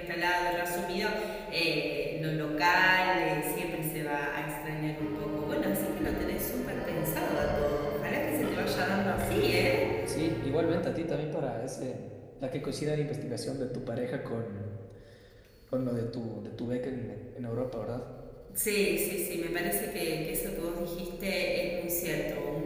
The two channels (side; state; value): both; identical; correlation 1.00